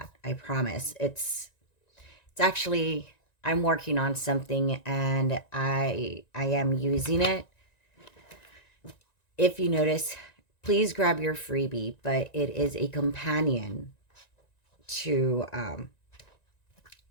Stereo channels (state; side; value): late; right; 1.9 ms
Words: I promise. It's actually, I'm working on something, and I am using it. If you notice, please grab your freebie, but it is a companion to